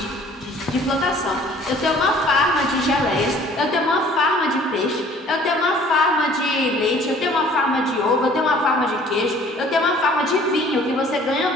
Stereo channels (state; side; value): normal; both; correlation 0.53